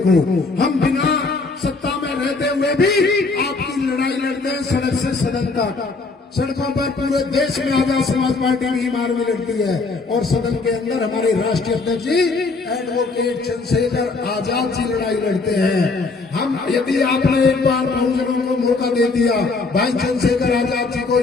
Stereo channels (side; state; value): right; quieter; 3.9 dB